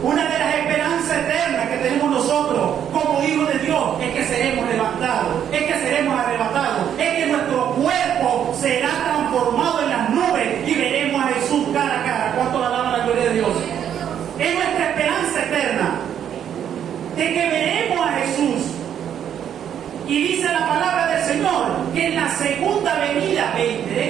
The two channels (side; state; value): left; quieter; 9.4 dB